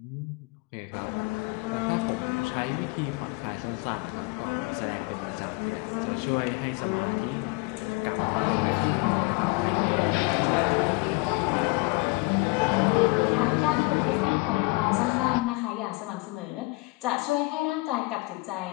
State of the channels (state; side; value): quieter; right; 26.0 dB